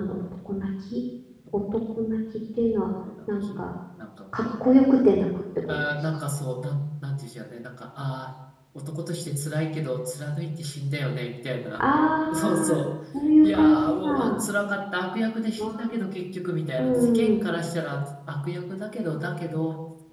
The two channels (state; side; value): identical; both; correlation 1.00